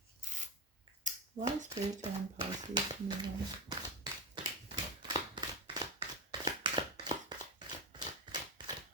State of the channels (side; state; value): both; normal; correlation 0.15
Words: Why is Spirit telling Pisces to move on?